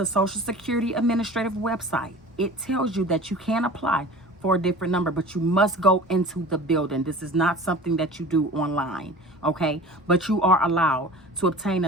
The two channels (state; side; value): normal; both; correlation 0.40